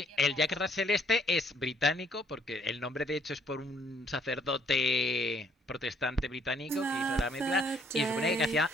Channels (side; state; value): both; normal; correlation 0.65